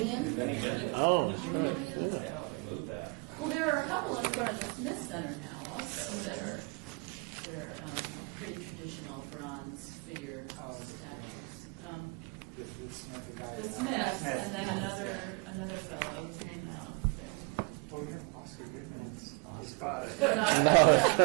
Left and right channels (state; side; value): quieter; left; 31.1 dB